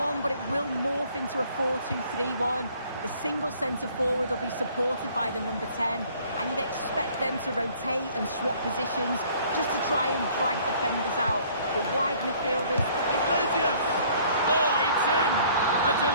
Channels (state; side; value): inverted; both; correlation -0.57